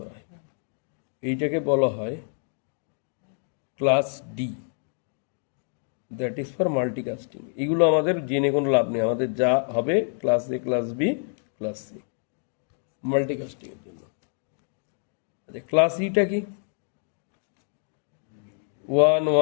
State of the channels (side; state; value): right; silent; 60 dB below the other